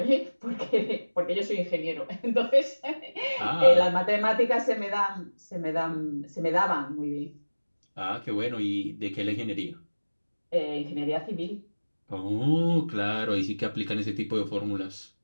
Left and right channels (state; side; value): inverted; both; correlation -1.00